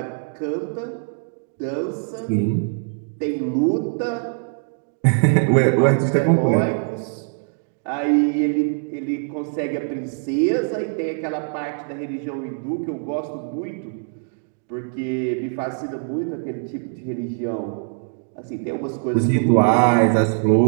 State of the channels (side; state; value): left; silent; 63 dB below the other